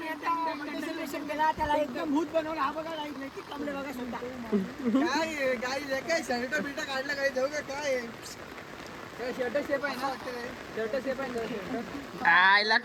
त्याला एकदम भूत बनवला. हा बघा नैतिक कांबळे बघा सुद्धा. काय गाईस काय शर्ट बिर्ट काढलं काय जाऊ का काय. शर्ट शेप आहे ना. शर्ट शेप आहे. आईला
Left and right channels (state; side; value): identical; both; correlation 1.00